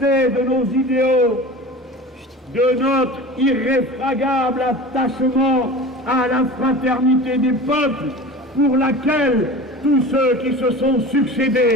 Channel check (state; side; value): normal; both; correlation 0.36